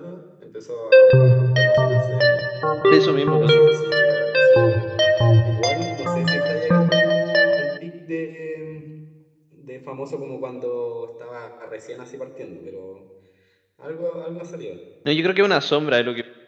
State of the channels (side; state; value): both; identical; correlation 1.00